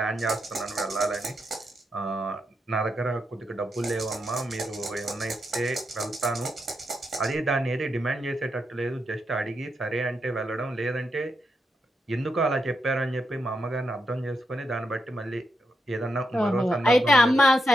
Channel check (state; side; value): normal; both; correlation 0.83